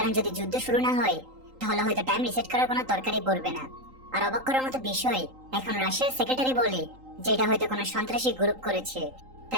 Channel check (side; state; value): left; late; 3.8 ms